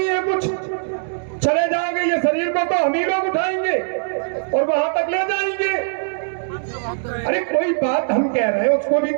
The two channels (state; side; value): silent; left; digital silence